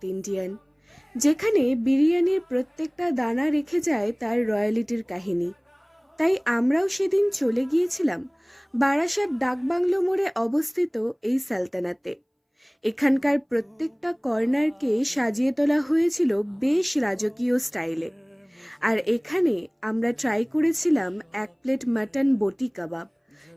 Indian, যেখানে বিরিয়ানির প্রত্যেকটা দানা রেখে যায় তার রয়্যালিটির কাহিনী। তাই আমরাও সেদিন চলে গিয়েছিলাম বারাসাত ডাকবাংলো মোড়ে অবস্থিত এই সালতানাতে। এখানকার প্রত্যেকটা কর্নারকে সাজিয়ে তোলা হয়েছিল বেশ রাজকীয় স্টাইলে। আর এখানে আমরা ট্রাই করেছিলাম 1 প্লেট মাটন বটি কাবাব,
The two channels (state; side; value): identical; both; correlation 1.00